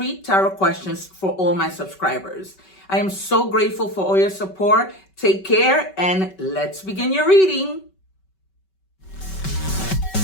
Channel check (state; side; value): late; right; 5.2 ms